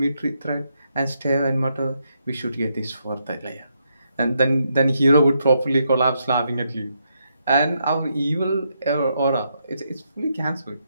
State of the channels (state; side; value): inverted; both; correlation -0.79